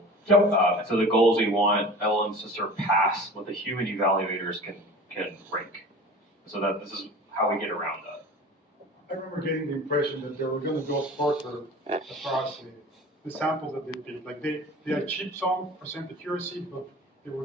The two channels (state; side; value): normal; both; correlation 0.39